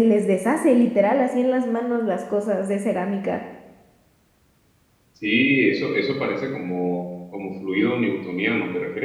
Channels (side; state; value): both; identical; correlation 1.00